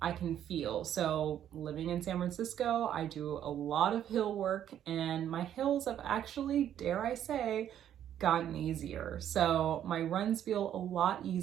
can feel. So living in San Francisco, I do a lot of hill work, and my hills have actually, dare I say, gotten easier. So my runs feel a lot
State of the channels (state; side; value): quieter; left; 10.4 dB